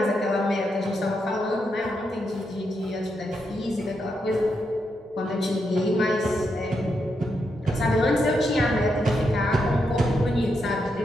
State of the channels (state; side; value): normal; both; correlation 0.82